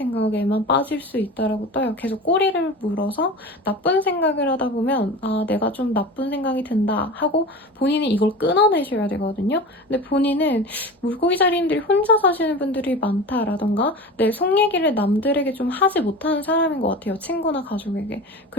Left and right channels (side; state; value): both; normal; correlation 0.32